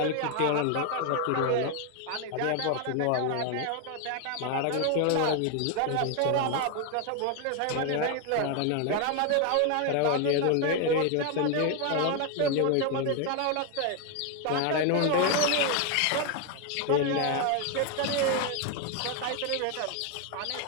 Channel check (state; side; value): different; both; correlation 0.01